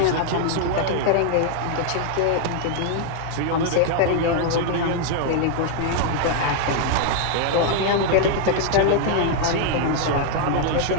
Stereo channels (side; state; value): both; different; correlation 0.00